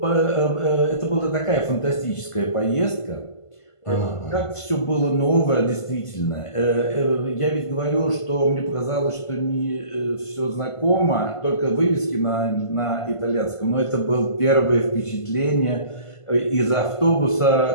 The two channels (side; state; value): right; late; 1.5 ms